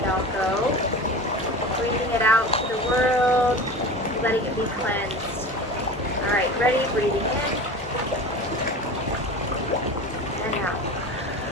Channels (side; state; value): both; normal; correlation 0.33